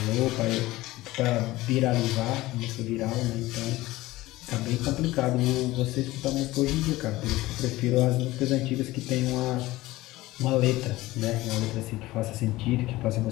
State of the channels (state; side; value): quieter; right; 18.2 dB